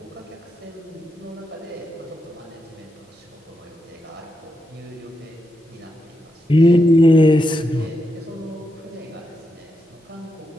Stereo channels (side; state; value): both; normal; correlation 0.85